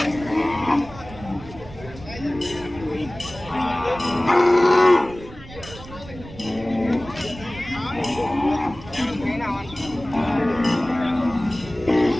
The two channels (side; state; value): right; noise; rumble, 16 dB below the sound